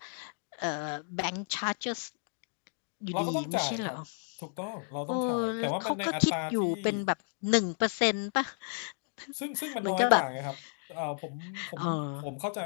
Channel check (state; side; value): silent; right; 56 dB below the other